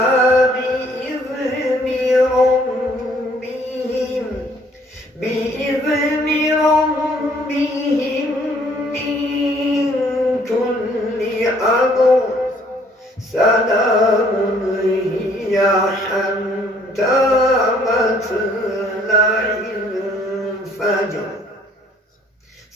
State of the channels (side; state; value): both; normal; correlation 0.62